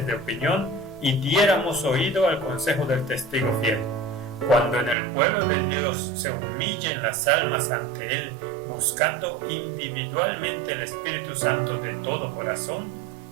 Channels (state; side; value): drops out; left; at 5.0 s